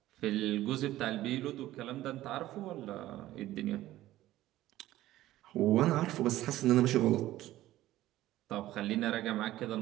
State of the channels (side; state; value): left; quieter; 15.1 dB